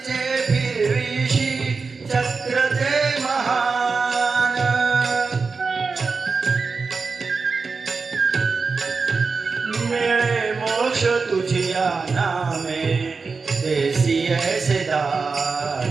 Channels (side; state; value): left; quieter; 4.6 dB